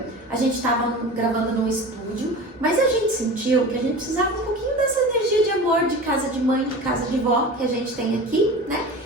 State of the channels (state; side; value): normal; both; correlation 0.34